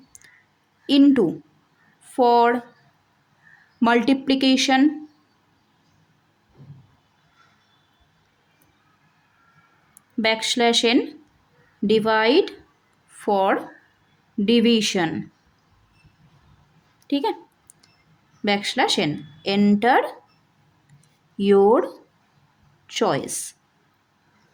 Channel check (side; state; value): both; identical; correlation 1.00